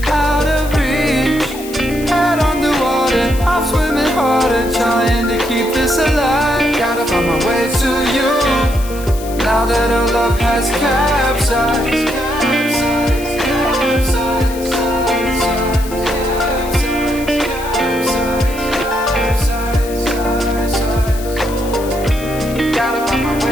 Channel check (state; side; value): noise; left; hiss, 15 dB below the sound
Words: out of reach. Head underwater, I'm swimming harder, trying to keep this alive. Gotta find my way to you, now that our love has capsized. Gotta find my